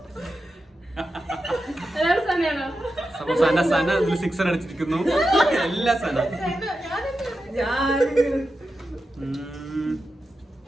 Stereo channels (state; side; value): normal; both; correlation 0.90